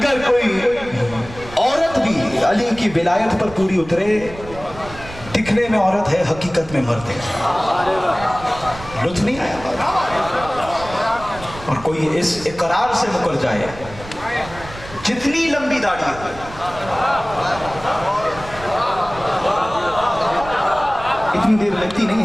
کوئی عورت بھی علی کی ولایت پر پوری اترے، دکھنے میں عورت ہے حقیقت میں مرد ہے. لطف نہیں آیا. اور کوئی اس اقرار سے مکر جائے جتنی لمبی داڑھی ہو، اتنی دیر لگتی نہیں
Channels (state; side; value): noise; right; rumble, 15 dB below the sound